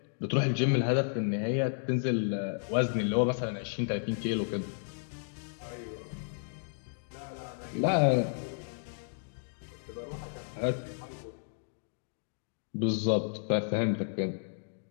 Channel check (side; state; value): right; silent; digital silence